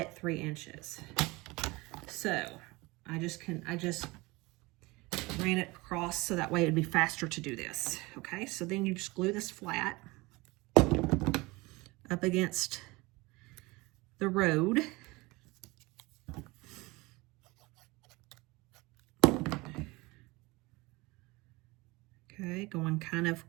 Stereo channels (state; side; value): quieter; left; 23.1 dB